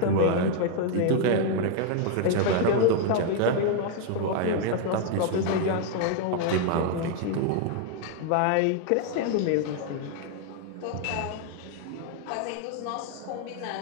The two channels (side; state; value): both; different; correlation 0.00